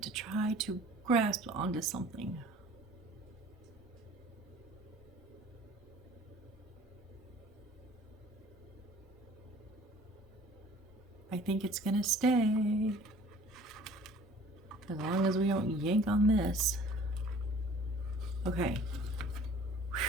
to try to grasp onto something. I think it's gonna stay. As long as we don't yank on this. Okay.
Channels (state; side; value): normal; both; correlation 0.50